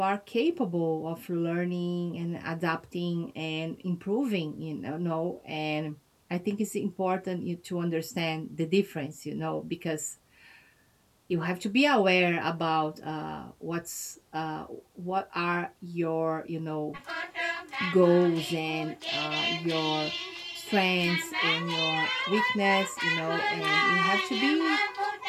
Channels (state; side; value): identical; both; correlation 1.00